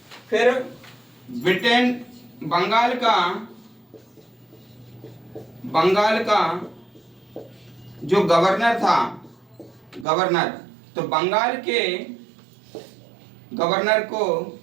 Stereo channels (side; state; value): left; drops out; at 10.1 s